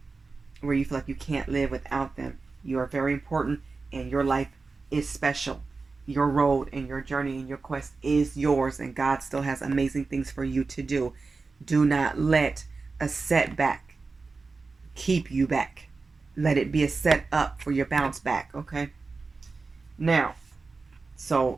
where you feel like you can't live without them. You are very important, and your life is special. Your road and your journey and your quest is yours, and God still has amazing things for you to do. Do not let a setback keep you back. Let it be a set up for your bounce back. Okay? Now,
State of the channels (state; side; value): quieter; left; 4.1 dB